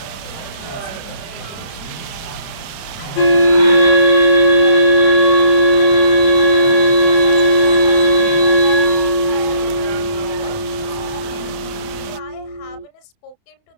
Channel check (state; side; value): late; right; 30 ms